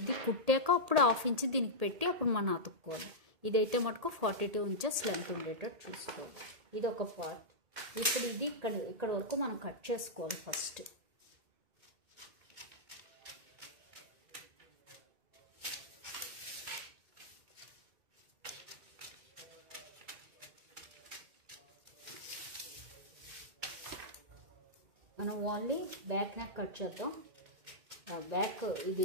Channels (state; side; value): late; left; 1.8 ms